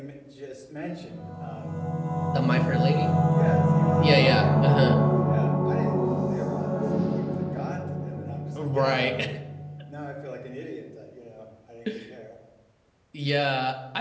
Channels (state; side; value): identical; both; correlation 1.00